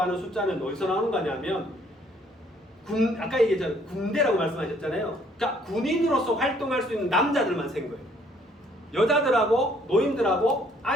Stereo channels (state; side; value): normal; both; correlation 0.63